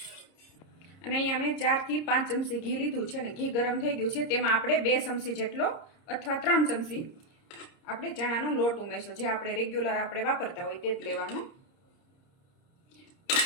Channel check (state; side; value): late; right; 30 ms